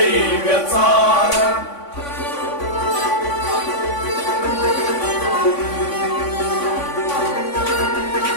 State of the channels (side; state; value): right; late; 3.5 ms